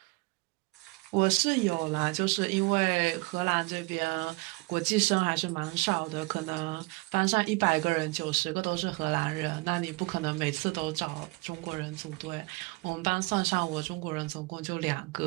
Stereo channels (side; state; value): left; quieter; 26.5 dB